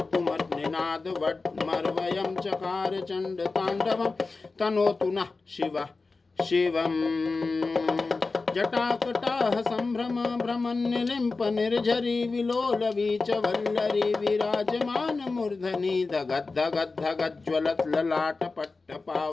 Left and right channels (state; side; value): quieter; right; 3.9 dB